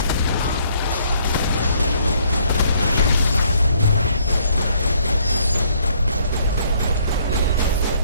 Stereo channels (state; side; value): inverted; both; correlation -0.65